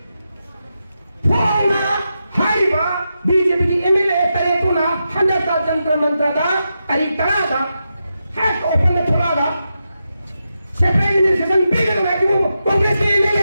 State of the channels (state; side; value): inverted; both; correlation -0.88